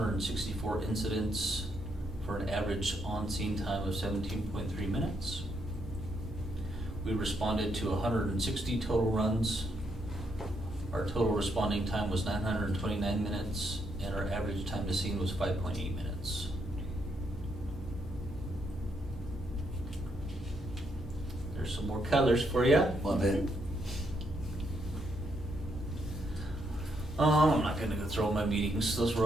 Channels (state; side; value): normal; both; correlation 0.76